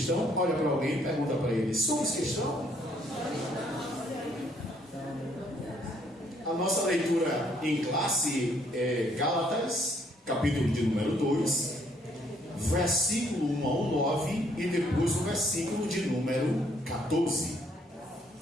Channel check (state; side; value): normal; both; correlation 0.67